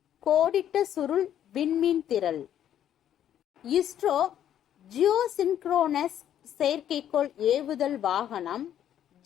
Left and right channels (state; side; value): quieter; right; 10.5 dB